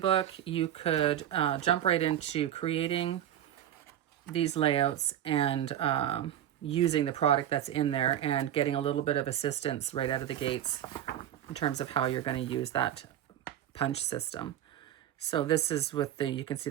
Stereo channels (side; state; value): left; quieter; 11.2 dB